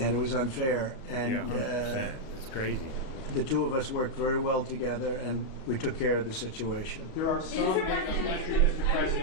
it was unfair. And Yeah, 100%. That's crazy. the two of us worked very well together, and we took care of the situation. There are some Mr.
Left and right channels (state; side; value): late; right; 37 ms